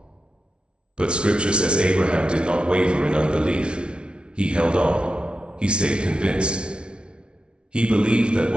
But Scripture says Abraham did not waver in unbelief. He held on. He stayed convinced. He believed that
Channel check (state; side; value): late; left; 0.057 ms